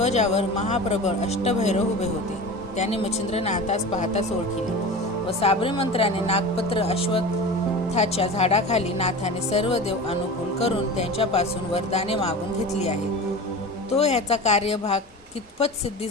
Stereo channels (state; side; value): normal; both; correlation 0.32